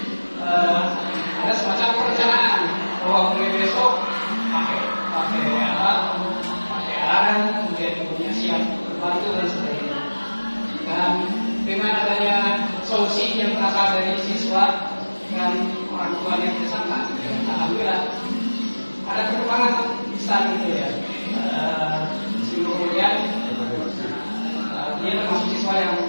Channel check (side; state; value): both; inverted; correlation -1.00